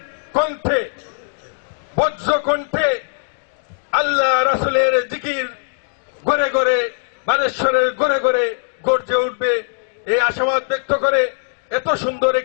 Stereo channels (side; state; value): right; silent; digital silence